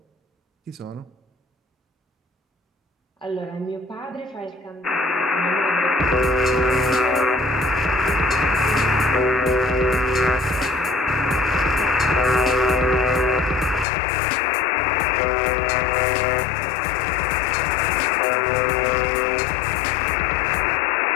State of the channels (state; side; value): drops out; right; at 13.9 s